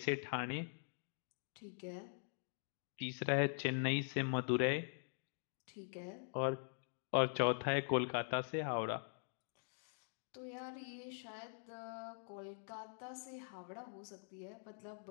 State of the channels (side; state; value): right; silent; digital silence